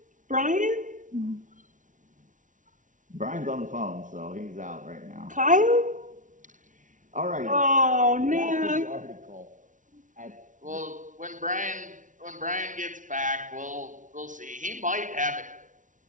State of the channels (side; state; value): left; late; 0.37 ms